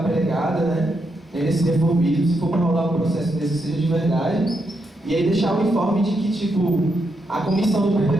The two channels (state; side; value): normal; both; correlation 0.81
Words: pregada, né, nesse reformismo, se for para rolar um processo desse, seja de verdade, e aí deixar o informe de que, tipo, a comissão do